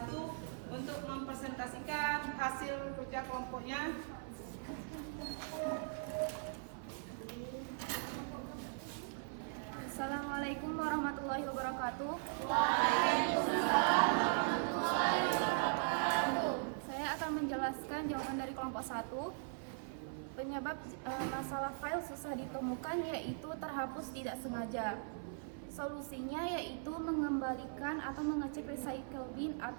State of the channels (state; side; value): silent; left; 51 dB below the other